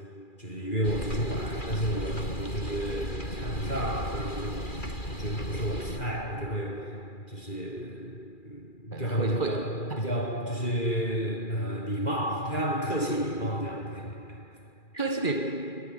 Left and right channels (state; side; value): late; right; 2.4 ms